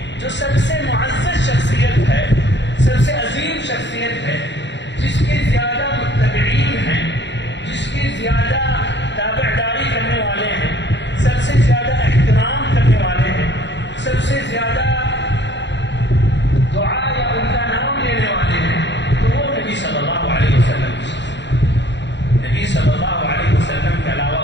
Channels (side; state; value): right; late; 0.52 ms